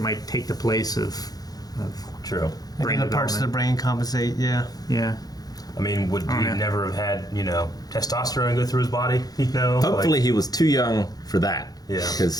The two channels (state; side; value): late; right; 0.19 ms